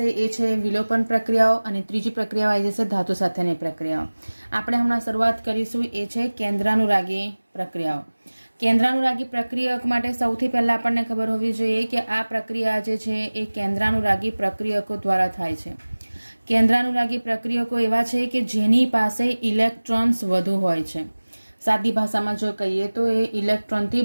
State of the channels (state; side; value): inverted; both; correlation -1.00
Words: એ છે વિલોપન પ્રક્રિયાઓ અને ત્રીજી પ્રક્રિયા આવી જશે ધાતુ સાથેની પ્રક્રિયાઓ। આપણે હમણાં શરૂઆત કરીશું એ છે કેન્દ્રાનુરાગી પ્રક્રિયાઓ। કેન્દ્રાનુરાગી પ્રક્રિયક માટે સૌથી પહેલા આપણને ખબર હોવી જોઈએ કે આ પ્રક્રિયા જે છે એ કેન્દ્રાનુરાગી પ્રક્રિયકો દ્વારા થાય છે। કેન્દ્રાનુરાગી પ્રક્રિયકો એવા છે કે જેની પાસે ઇલેક્ટ્રોન્સ વધુ હોય છે। સાદી ભાષામાં જો કહીએ તો એ ઇલેક્ટ્રોનથી